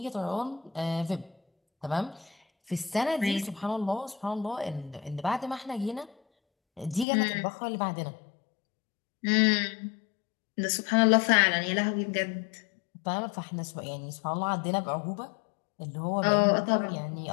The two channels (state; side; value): drops out; right; at 7.1 s